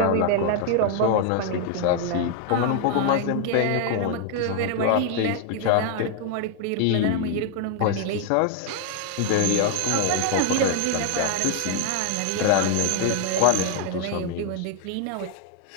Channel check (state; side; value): different; both; correlation 0.00